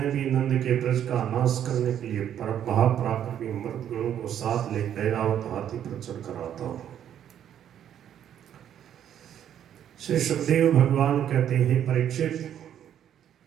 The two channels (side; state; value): left; quieter; 10.0 dB